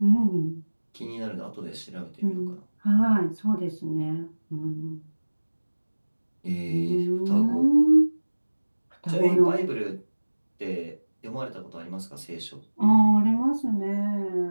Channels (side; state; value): both; inverted; correlation -1.00